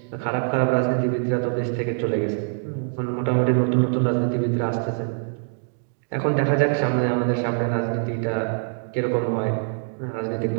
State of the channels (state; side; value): silent; left; digital silence